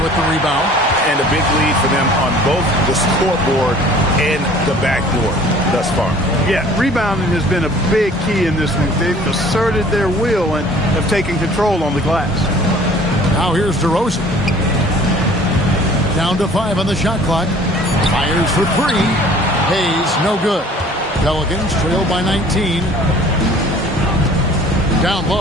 with the rebound. And a big lead for them on both the scoreboard and the backboard thus far. Yeah, rebounding has been a big key in this one. They've asserted their will and have taken control on the glass. Now here's DeRozan. Down to 5 on the shot clock. Fires for 3. Hayes, no good. Pelicans trail by 19. Down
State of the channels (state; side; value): normal; both; correlation 0.51